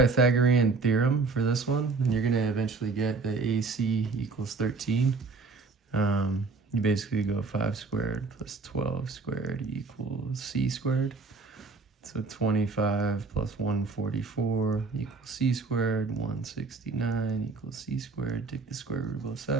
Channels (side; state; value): left; quieter; 4.0 dB